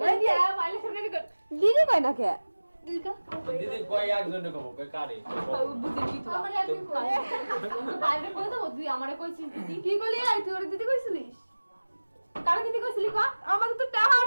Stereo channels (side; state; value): both; inverted; correlation -1.00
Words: ওই দিয়া মাইলে শুনে কর দিদি কই না কে দিদি ক দিদি কই একজনে কব কই কারে বুঝি কি তো আমারে একদিন কই বাইরে কই তো তুই আমারে কইছিস দিদি কি কইলি? আই তুই ওর দিদি কইছিলিস? কারে দিদি কইছিলি ক? আমাকে তো টাহা